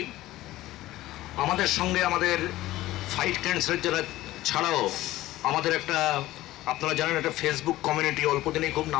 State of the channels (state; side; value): quieter; right; 16.3 dB